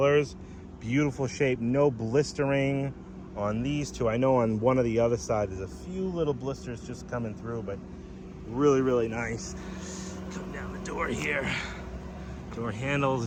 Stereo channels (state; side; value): identical; both; correlation 1.00